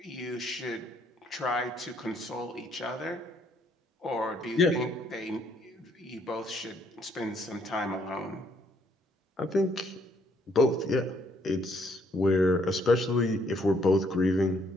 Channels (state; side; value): normal; both; correlation 0.68